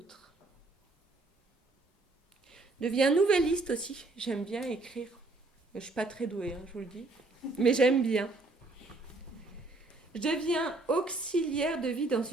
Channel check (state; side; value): quieter; left; 3.1 dB